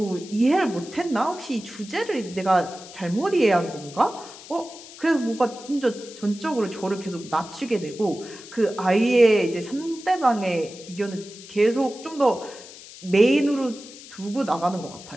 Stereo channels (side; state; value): left; noise; hiss, 17 dB below the sound